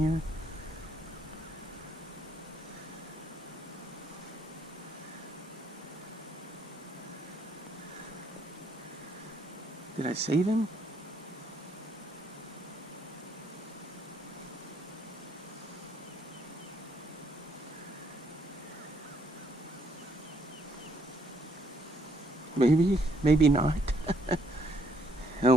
Did I save him? Maybe, maybe not. Oh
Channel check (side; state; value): both; normal; correlation 0.70